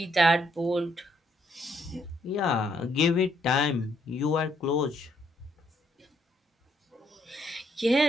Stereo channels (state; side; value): normal; both; correlation 0.72